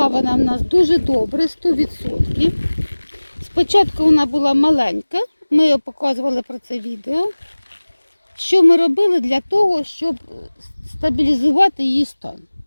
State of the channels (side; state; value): both; inverted; correlation -1.00